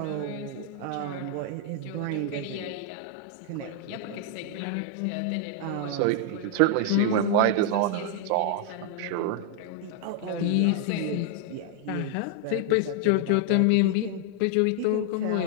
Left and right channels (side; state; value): both; different; correlation 0.00